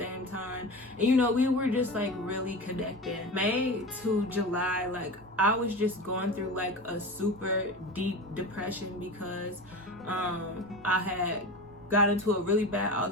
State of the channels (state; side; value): normal; both; correlation 0.29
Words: time, and we were just like really connected. May to July, like I was just going through like a super deep depression because I had got into a really bad